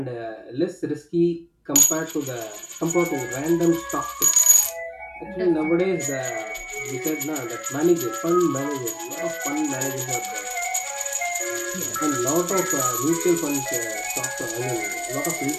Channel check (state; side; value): identical; both; correlation 1.00